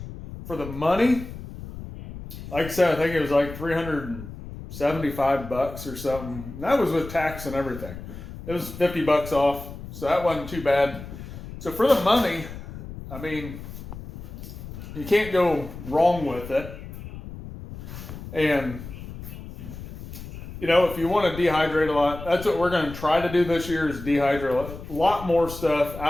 for the money, like I said, I think it was like $375 or something. And that was with tax and everything. It was $50 off, so that wasn't too bad. So for the money, I mean, you can't go wrong with it. And, you know, if you want to dehydrate a lot, that's what we're going to try to do this year, is dehydrate a lot more stuff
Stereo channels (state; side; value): noise; left; rumble, 12 dB below the sound